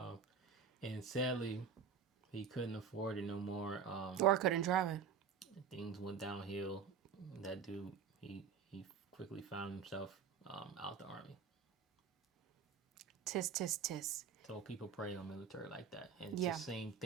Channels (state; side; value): quieter; left; 6.6 dB